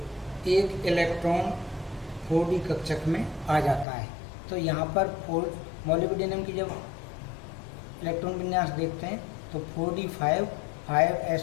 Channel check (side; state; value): right; drops out; at 3.9 s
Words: इलेक्ट्रॉन 4d कक्षक में आ जाता है। तो यहाँ पर मोलिब्डेनम की जब इलेक्ट्रॉन विन्यास देखते हैं तो 4d5